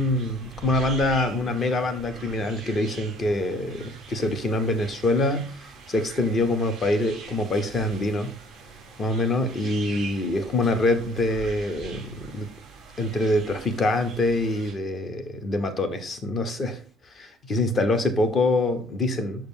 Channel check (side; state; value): both; normal; correlation 0.58